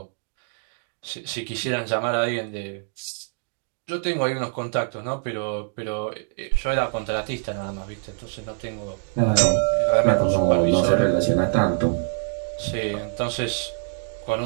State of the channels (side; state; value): left; silent; 59 dB below the other